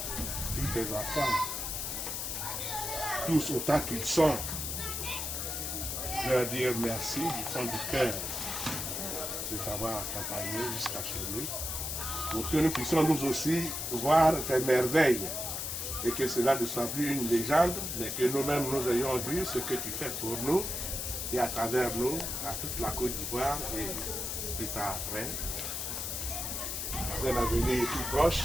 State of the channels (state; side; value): noise; left; hiss, 3 dB below the sound